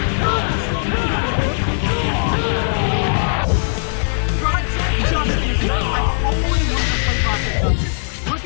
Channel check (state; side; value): silent; right; 59 dB below the other